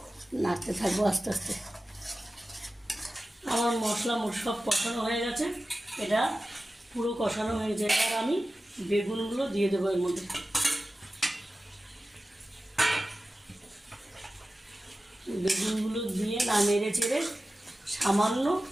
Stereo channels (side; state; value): both; normal; correlation 0.95